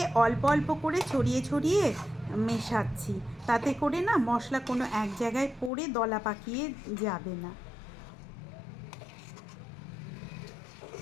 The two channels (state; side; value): drops out; right; at 5.7 s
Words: অল্প অল্প করে ছড়িয়ে ছড়িয়ে মেশাচ্ছি, তাতে করে না মশলা কোনো এক জায়গায় পড়ে দলা পাকিয়ে যাবে না।